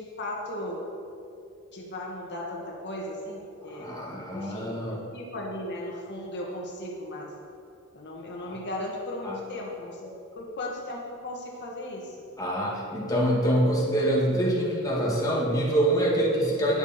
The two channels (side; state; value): both; normal; correlation 0.40